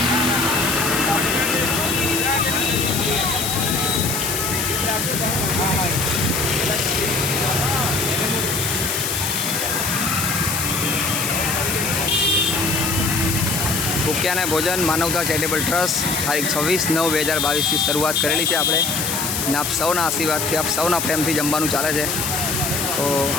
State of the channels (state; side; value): noise; left; hiss, 2 dB below the sound